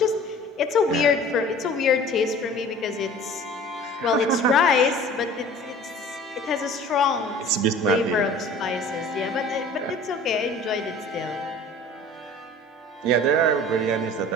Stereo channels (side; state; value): both; normal; correlation 0.45